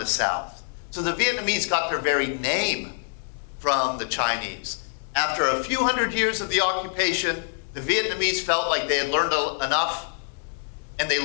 the South. So the Vietnamese got their very name from the Chinese. After a few hundred years of the occupation, the Vietnamese felt like they had learned enough, and they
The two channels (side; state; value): right; silent; digital silence